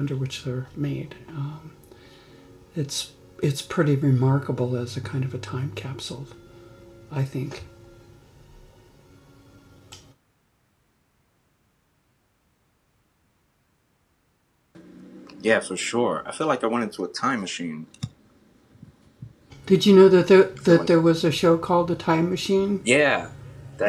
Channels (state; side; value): identical; both; correlation 1.00